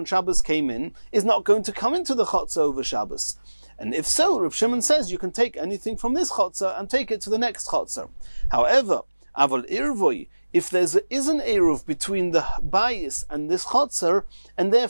Shabbos came in is not going to come into the chotzer over Shabbos. And if so, Reb Shimon says you can take anything from this chotzer and take it to the next chotzer. However, aval irvoi, if there is an eruv between the bayis and this chotzer, and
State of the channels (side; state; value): both; inverted; correlation -1.00